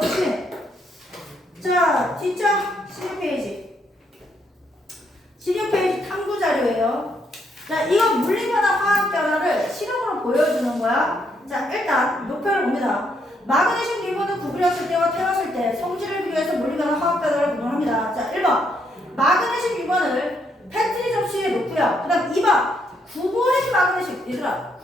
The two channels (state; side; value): normal; both; correlation 0.74